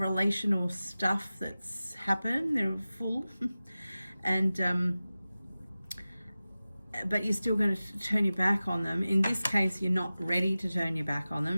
stuff that's happened, they're full. And but you're still going to turn your back on them. In this case, you're not ready to turn your back on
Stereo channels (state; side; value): inverted; both; correlation -0.96